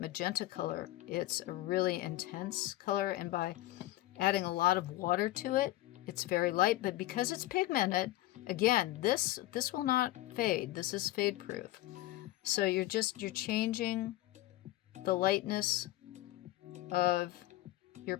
magenta color, it's a really intense color, and by adding a lot of water to it, it's very light. But because it's pigmented, again, this will not fade. This is fade proof. So you're changing the lightness of your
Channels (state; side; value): quieter; right; 16.4 dB